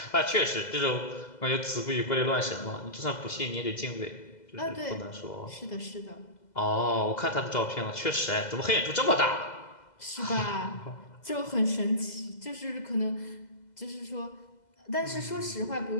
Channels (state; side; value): late; right; 2.0 ms